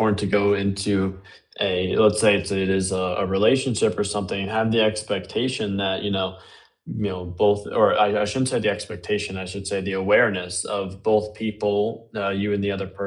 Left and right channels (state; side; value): identical; both; correlation 1.00